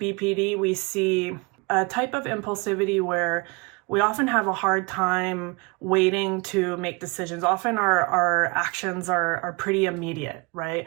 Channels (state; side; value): quieter; left; 28.3 dB